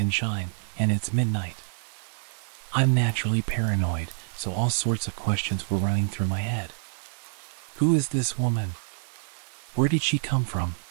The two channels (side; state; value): left; silent; digital silence